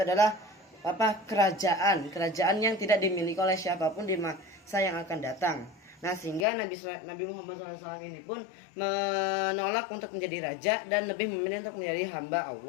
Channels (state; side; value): drops out; right; at 6.5 s